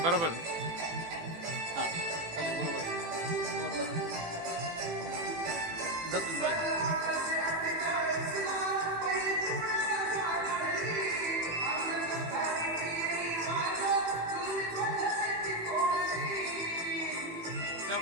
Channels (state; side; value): late; left; 18 ms